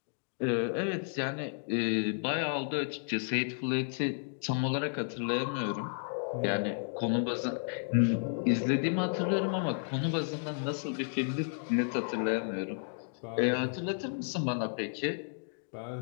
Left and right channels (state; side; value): silent; right; digital silence